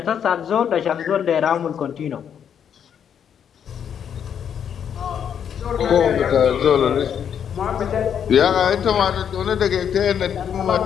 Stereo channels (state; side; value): quieter; right; 8.4 dB